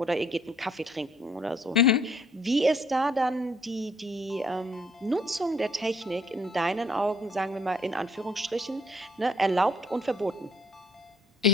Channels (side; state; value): both; normal; correlation 0.63